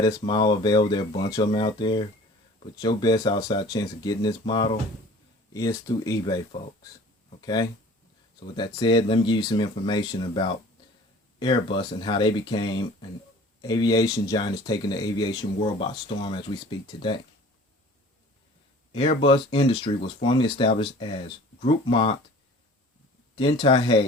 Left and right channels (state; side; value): normal; both; correlation 0.46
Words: this model available. There are a bunch of them out there. But your best outside chance of getting this model is through eBay, folks. Okay? So with that said, let me give you some information about Airbus and how they became an aviation giant that's taking the aviation world by storm as we speak today. Airbus Industry was formally established as Groupement